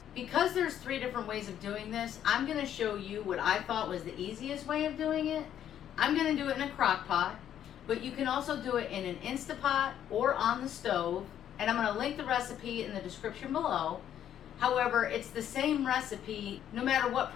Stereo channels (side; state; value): right; quieter; 10.3 dB